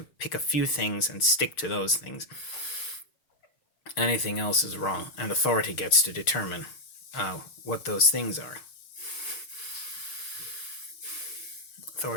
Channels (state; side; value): late; right; 6.5 ms